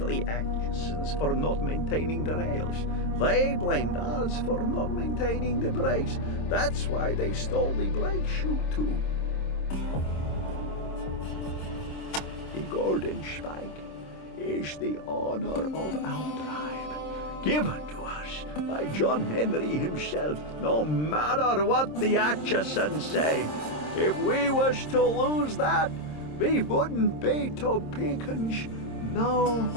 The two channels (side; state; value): right; late; 26 ms